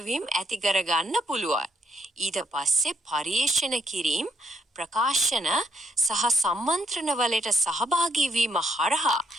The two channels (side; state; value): both; normal; correlation 0.73